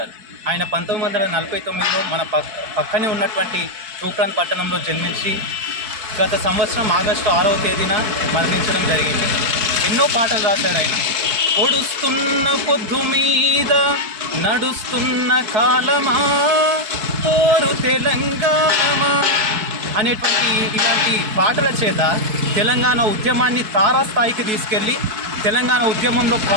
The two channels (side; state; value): left; late; 4.6 ms